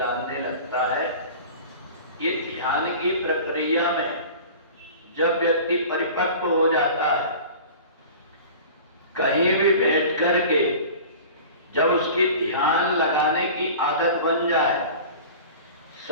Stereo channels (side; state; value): both; inverted; correlation -0.39